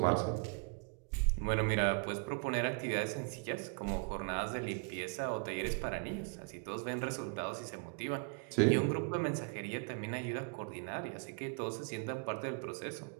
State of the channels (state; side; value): quieter; left; 36.4 dB